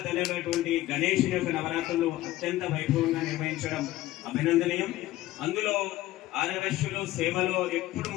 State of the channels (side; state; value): right; quieter; 15.8 dB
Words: తెలియనటువంటి గణేషుని యొక్క నవరాత్రులు అత్యంత వైభవంగా నిర్వహించడం అభినందనీయం. అందులో ఆర్యవైశ్యులు సేవలో ఎప్పుడు